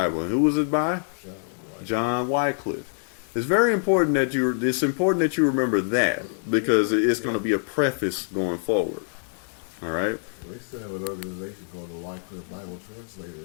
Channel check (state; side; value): silent; right; digital silence